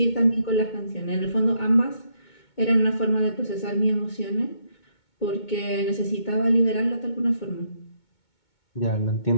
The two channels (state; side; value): late; right; 2.2 ms